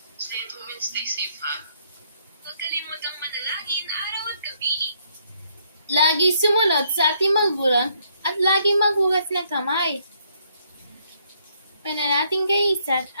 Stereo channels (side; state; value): both; inverted; correlation -0.70